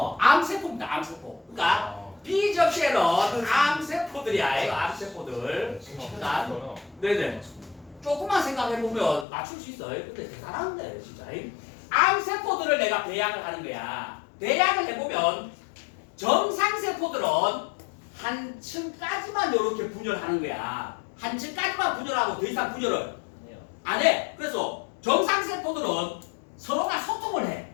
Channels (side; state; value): right; drops out; at 9.2 s